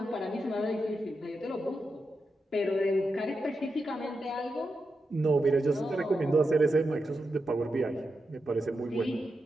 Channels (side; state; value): both; normal; correlation 0.88